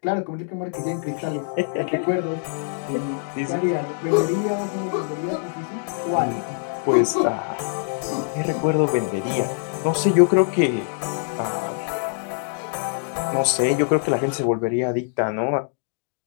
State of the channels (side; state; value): right; silent; digital silence